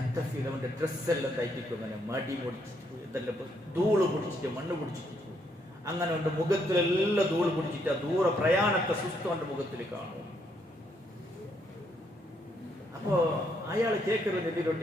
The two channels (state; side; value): normal; both; correlation 0.74